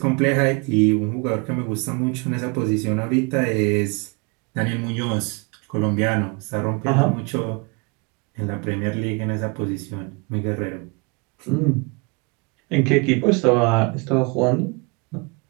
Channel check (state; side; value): quieter; left; 30.9 dB